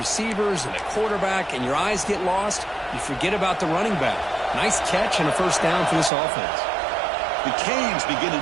and the quarterback, and your eyes get lost. You forget about the running back. Nice catch and a 1st down for this offense. The Canes begin a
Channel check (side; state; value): left; drops out; at 6.1 s